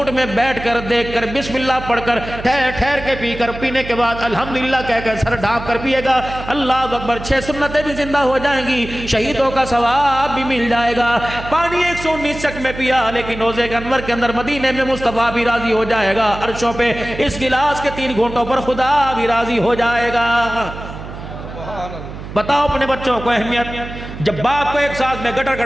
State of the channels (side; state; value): right; noise; hum, 11 dB below the sound